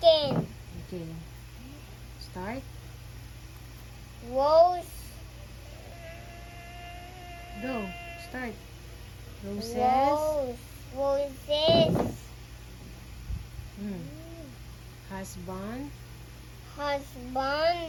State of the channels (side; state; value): both; identical; correlation 1.00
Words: Okay. Start. Rose, Go. Start. Roses. roses, Hmm. Husband.